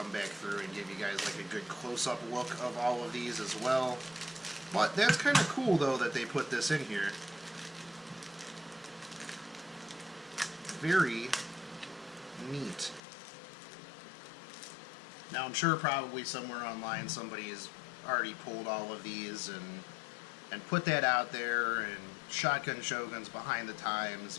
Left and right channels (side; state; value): right; drops out; at 13.0 s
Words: back through and give you guys like a good close-up look of all of these as well. But that's kind of cool though that they put this in here. Very neat. Now I'm sure probably somewhere online somebody has already pulled all of these and put that out there, and Shotgun Shogun's behind the times,